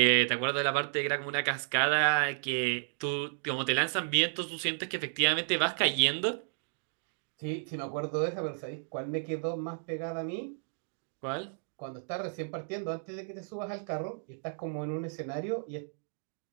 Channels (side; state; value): left; silent; digital silence